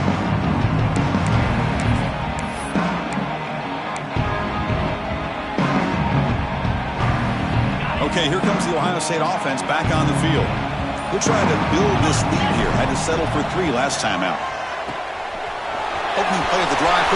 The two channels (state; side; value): identical; both; correlation 1.00